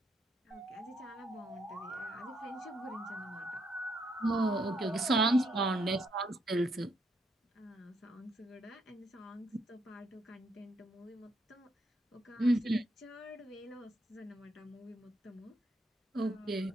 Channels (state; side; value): normal; both; correlation 0.75